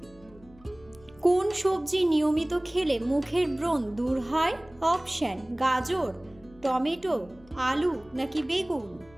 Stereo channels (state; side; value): noise; left; hum, 26 dB below the sound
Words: কোন সবজি নিয়মিত খেলে মুখের ব্রণ দূর হয়? অপশন: গাজর, টমেটো, আলু নাকি বেগুন?